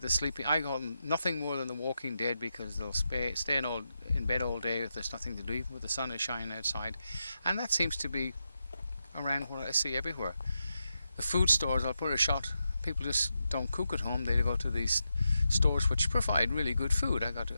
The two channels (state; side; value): inverted; both; correlation -0.87